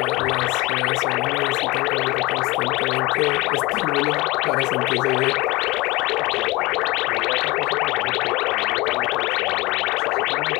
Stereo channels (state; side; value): quieter; right; 22.9 dB